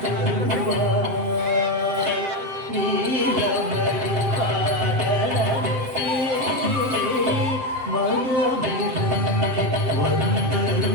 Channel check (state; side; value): late; left; 7.8 ms